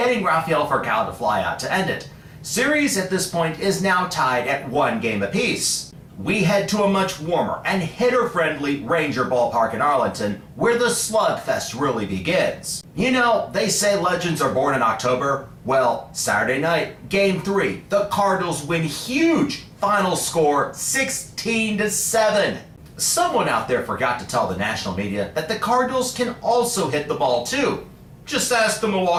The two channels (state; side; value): identical; both; correlation 1.00